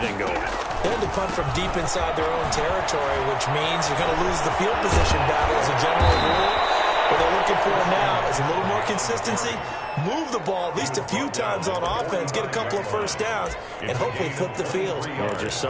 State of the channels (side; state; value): both; identical; correlation 1.00